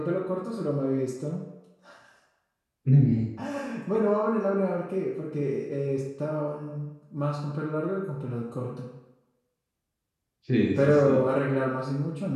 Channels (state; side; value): identical; both; correlation 1.00